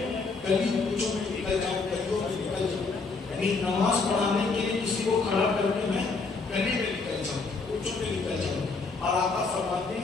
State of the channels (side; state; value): right; quieter; 4.2 dB